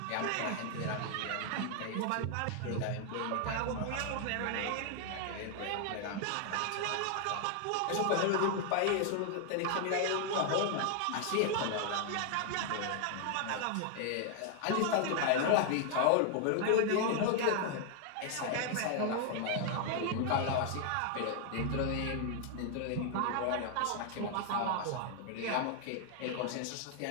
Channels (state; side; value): different; both; correlation 0.00